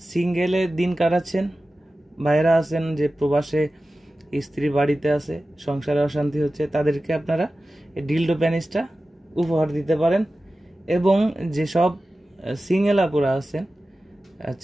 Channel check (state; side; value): normal; both; correlation 0.95